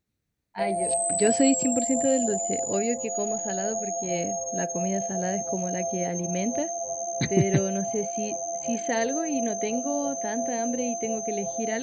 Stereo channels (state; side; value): identical; both; correlation 1.00